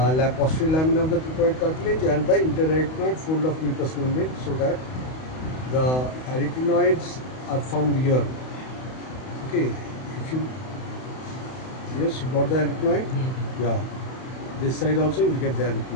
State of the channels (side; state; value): right; late; 31 ms